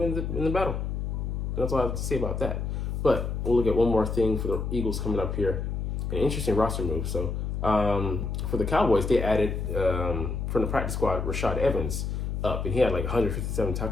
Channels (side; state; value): left; noise; hum, 2 dB below the sound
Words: to win in the battle. And that's all I have to say about that. But we'll look at one more thing for the Eagles coming up here. An interesting roster move. So for the Cowboys, they added from the practice squad Rashad Evans up, and he had like 157